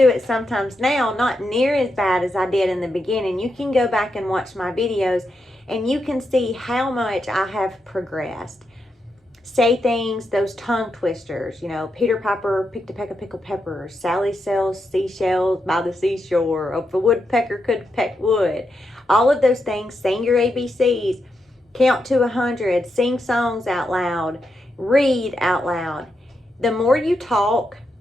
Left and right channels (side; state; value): both; normal; correlation 0.84